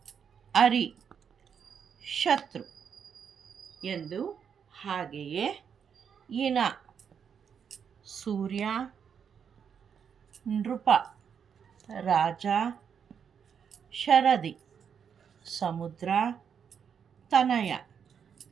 ಅರಿ, ಶತ್ರು ಎಂದು, ಹಾಗೆಯೇ ಇನ, ಸೂರ್ಯ, ನೃಪ, ರಾಜ, ಶರದಿ, ಸಮುದ್ರ, ತನಯ,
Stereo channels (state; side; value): quieter; left; 7.4 dB